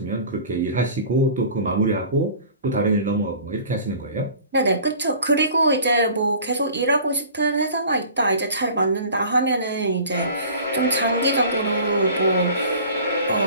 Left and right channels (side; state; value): both; inverted; correlation -0.44